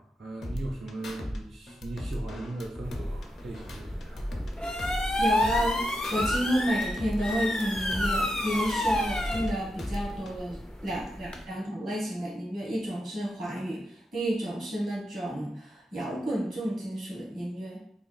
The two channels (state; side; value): normal; both; correlation 0.86